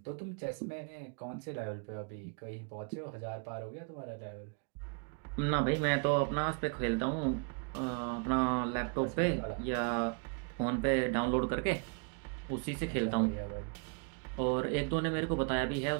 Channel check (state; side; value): quieter; left; 36.5 dB